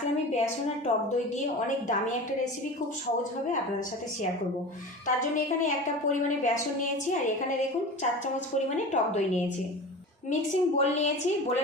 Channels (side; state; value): both; normal; correlation 0.33